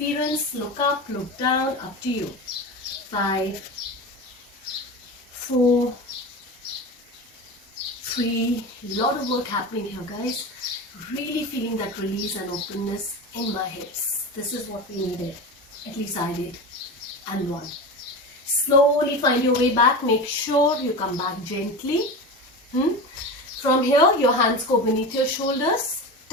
Look up, look down, up to you. 5, 4, 3. Lot of work happening here, guys. Really feeling that release and openness in my hips. This is what we needed. At least I did. And 1. Slowly find your way back. Make sure you come back gently. From here, your hands go beneath your shoulders.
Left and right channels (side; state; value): both; normal; correlation 0.26